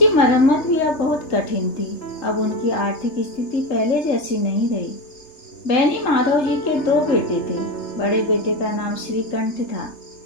मरम्मत भी अब बहुत कठिन थी। अब उनकी आर्थिक स्थिति पहले जैसी नहीं रही। बेनी माधव जी के दो बेटे थे। बड़े बेटे का नाम श्रीकंठ था।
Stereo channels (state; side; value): late; right; 3.3 ms